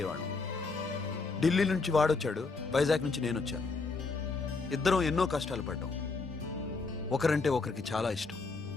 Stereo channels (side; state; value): right; quieter; 4.1 dB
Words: ఢిల్లీ నుంచి వాడొచ్చాడు, వైజాగ్ నుంచి నేను వచ్చాను. ఇద్దరం ఎన్నో కష్టాలు పడ్డాం. ఒకరంటే ఒకరికి చాలా ఇష్టం.